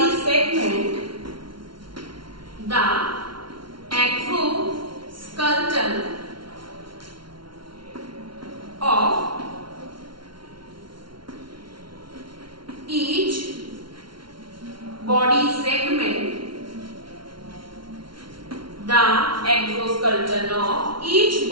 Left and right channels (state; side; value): late; left; 0.73 ms